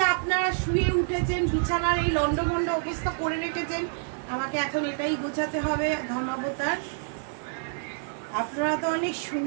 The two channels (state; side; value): silent; left; digital silence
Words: আপনারা শুয়ে উঠেছেন, বিছানার এই লন্ডভন্ড অবস্থা করে রেখেছেন, আমাকে এখন এটাই গোছাতে হবে ধর্মাবতার। আপনারা তো অনেক